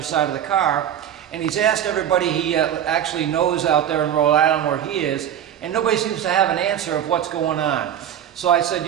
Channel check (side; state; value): left; quieter; 10.0 dB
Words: of the car. And he's asked everybody he actually knows out there in Rhode Island where he is, and nobody seems to have an answer of what's going on. So I said,